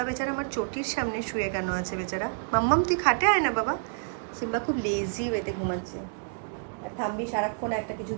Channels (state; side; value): silent; left; digital silence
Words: বেচারা আমার চটির সামনে শুয়ে কেন আছে বেচারা? মাম্মাম তুই খাটে আয় না বাবা। সিম্বা খুব লেজি ওয়েতে ঘুমাচ্ছে, আর থাম্বি সারাক্ষণ একটা কিছু